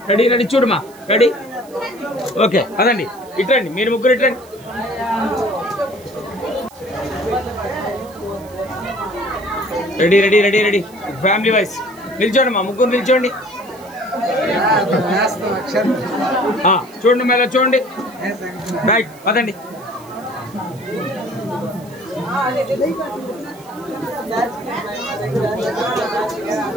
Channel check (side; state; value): right; noise; hiss, 24 dB below the sound